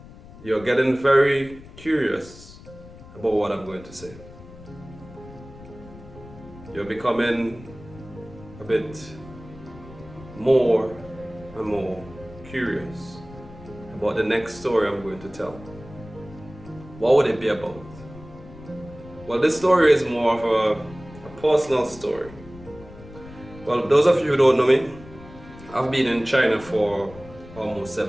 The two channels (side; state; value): left; noise; rumble, 18 dB below the sound